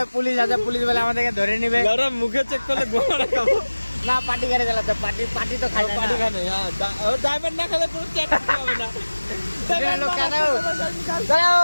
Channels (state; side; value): inverted; both; correlation -1.00